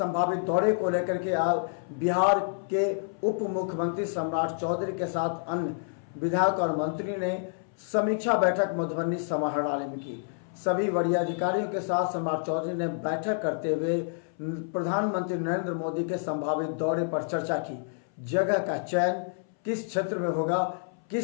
दौरे को लेकर के बिहार के उप मुख्यमंत्री सम्राट चौधरी के साथ अन्य विधायक और मंत्री ने समीक्षा बैठक मधुबनी समाहरणालय में की। सभी वरीय अधिकारियों के साथ सम्राट चौधरी ने बैठक करते हुए प्रधानमंत्री नरेंद्र मोदी के संभावित दौरे पर चर्चा की। जगह का चयन किस क्षेत्र में होगा, किस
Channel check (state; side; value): silent; right; 59 dB below the other